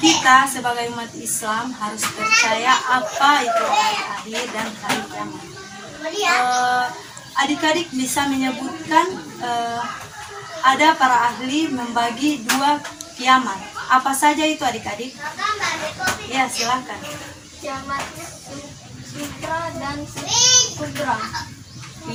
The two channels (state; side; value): identical; both; correlation 1.00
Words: kita sebagai umat Islam harus percaya apa itu hari akhir dan hari kiamat. Adik-adik bisa menyebutkan ada para ahli membagi 2 kiamat. Apa saja itu adik-adik? Ya, silakan. Kiamat sutra dan kubra.